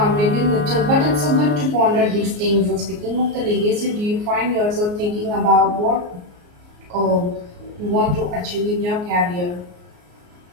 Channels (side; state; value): left; late; 34 ms